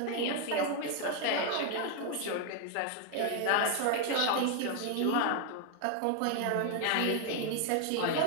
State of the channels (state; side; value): different; both; correlation 0.00